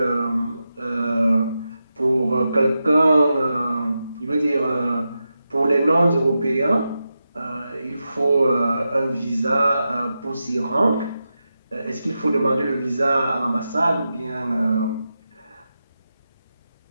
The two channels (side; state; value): both; inverted; correlation -0.90